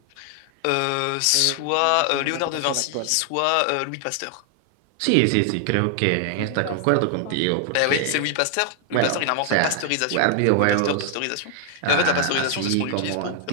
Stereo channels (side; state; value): both; different; correlation 0.00